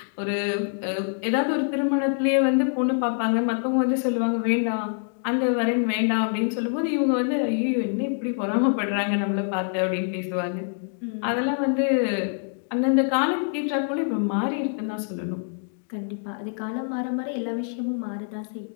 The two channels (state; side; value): silent; right; 62 dB below the other